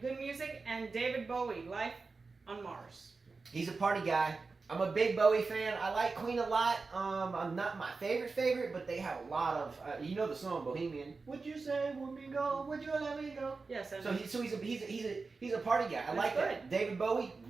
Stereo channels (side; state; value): left; quieter; 4.2 dB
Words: Good Music, and David Bowie, Life on Mars. He's a party guy. I'm a big Bowie fan. I like Queen a lot. I'm not my favorite, but they have a lot of, you know the song Bohemian. Would you say let me go? Would you let me go? Yes. So he's a party guy. I like good. that. David Bowie